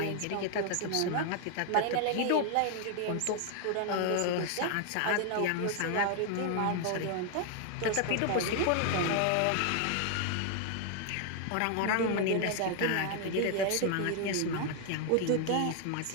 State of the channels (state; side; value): different; both; correlation 0.00